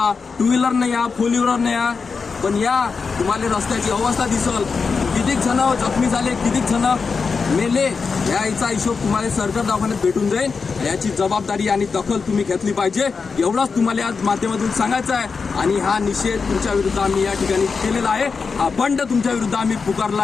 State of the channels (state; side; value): quieter; right; 5.0 dB